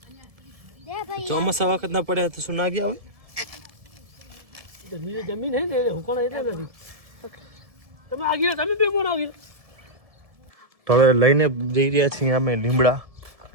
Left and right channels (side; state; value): left; late; 1.7 ms